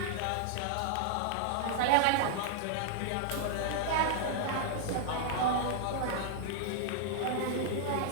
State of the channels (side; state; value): both; different; correlation -0.01